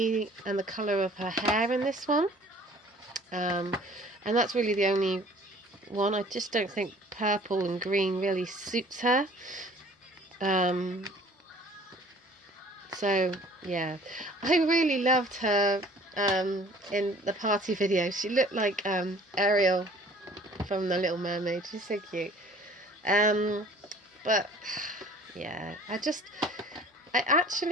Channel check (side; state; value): both; normal; correlation 0.51